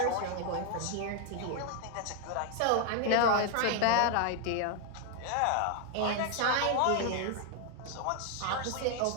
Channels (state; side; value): different; both; correlation 0.00